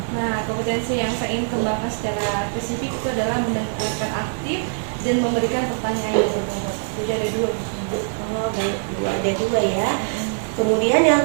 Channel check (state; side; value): silent; left; digital silence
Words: Nah, kompetensi yang saya ingin kembangkan secara spesifik itu adalah mendengarkan aktif dan memberikan pertanyaan yang berbobot. Jadi ada dua. Oh, baik Bu, ada dua ya. Kemudian yang